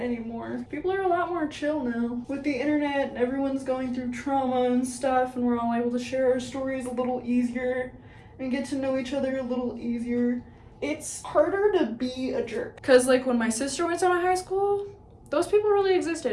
People are a lot more chill now. With the internet and everyone's going through trauma and stuff, and we're all able to share our stories a little easier and get to know each other a little easier. It's harder to be a jerk. Cause like when my sister went to high school, those people really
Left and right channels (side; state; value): both; identical; correlation 1.00